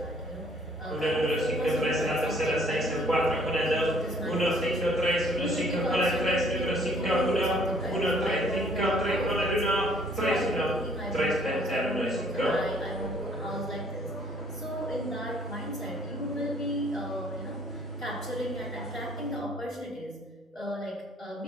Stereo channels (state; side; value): normal; both; correlation 0.60